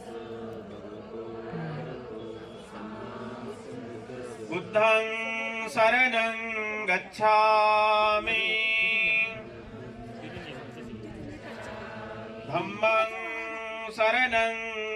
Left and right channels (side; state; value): both; identical; correlation 1.00